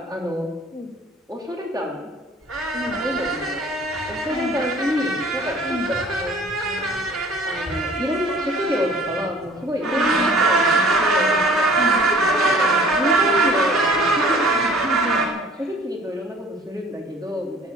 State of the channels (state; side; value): normal; both; correlation 0.51